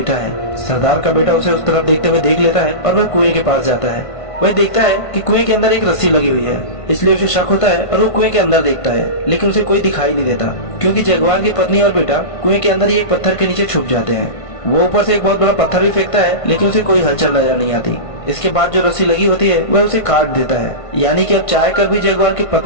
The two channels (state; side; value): late; right; 1.5 ms